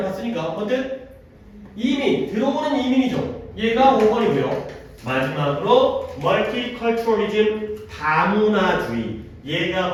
봤으니까. 어쨌든 이민, 들어오는 이민이죠. 얘가 5번이고요. 마지막으로 multiculturalism, 다문화주의. 얘가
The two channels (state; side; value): identical; both; correlation 1.00